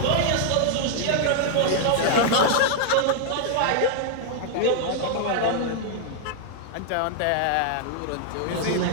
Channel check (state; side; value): different; both; correlation -0.01